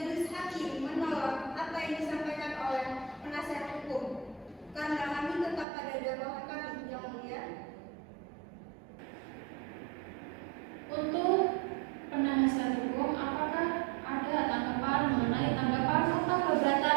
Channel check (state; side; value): drops out; left; at 5.7 s